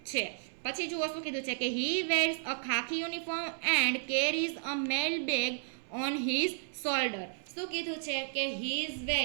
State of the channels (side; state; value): left; silent; 56 dB below the other